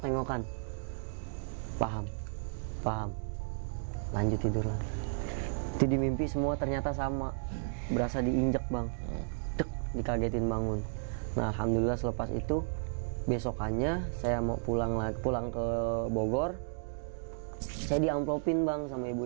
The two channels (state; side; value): silent; left; digital silence